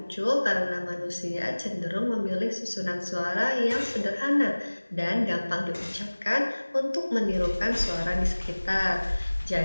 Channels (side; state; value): both; inverted; correlation -1.00